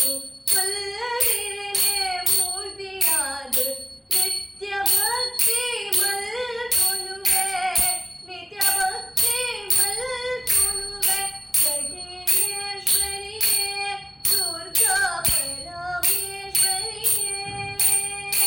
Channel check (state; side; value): identical; both; correlation 1.00